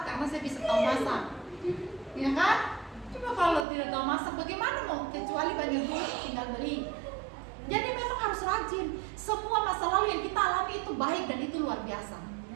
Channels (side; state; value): left; drops out; at 3.7 s